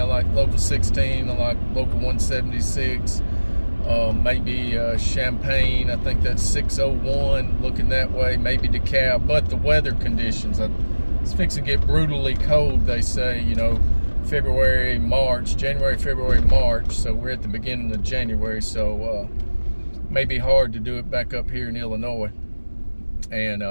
like local 16, I like local 176, maybe Champaign, I think that's 601, looking that way, maybe DeKalb. But the weather conditions, it's fixing to get brutally cold, they say, February, March, January, February, March. So we're at the beginning of January. So may be hard to do it back up here in Illinois. And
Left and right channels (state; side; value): inverted; both; correlation -1.00